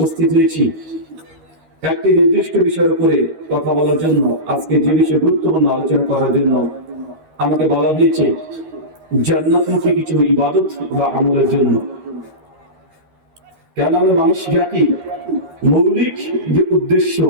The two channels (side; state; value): left; late; 13 ms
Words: হয়েছি একটি নির্দিষ্ট বিষয়ের উপরে কথা বলার জন্য। আজকে যে বিষয়ে গুরুত্বপূর্ণ আলোচনা করার জন্য আমাকে বলা হয়েছে জান্নাতমুখী কিছু ইবাদত বা আমলের জন্য। কেন আমরা মানুষ জাতি মৌলিক যে উদ্দেশ্য